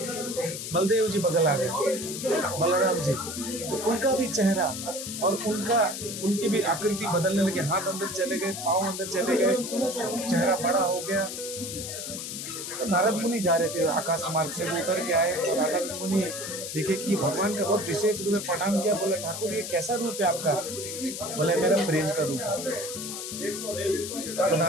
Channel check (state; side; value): noise; left; hiss, 7 dB below the sound